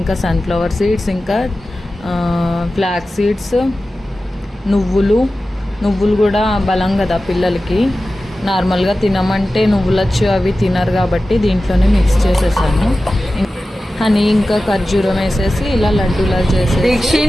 సన్ఫ్లవర్ సీడ్స్, ఇంకా ఫ్లాక్ సీడ్స్, నువ్వులు కూడా బలం కదా పిల్లలకి. నార్మల్గా తినమంటే నువ్వులచ్చు అవి తినరు కాబట్టి దీంట్లోనే మిక్స్ చేసేసాను. హనీ ఇంకా ఖర్జూరం వేసేసి ఇలా లడ్డూలా చేసి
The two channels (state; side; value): normal; both; correlation 0.95